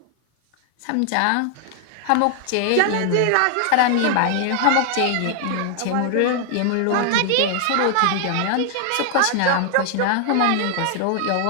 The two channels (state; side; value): different; both; correlation 0.00